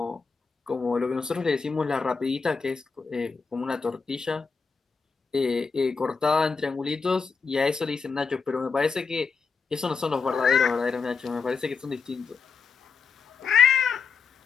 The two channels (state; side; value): quieter; right; 5.1 dB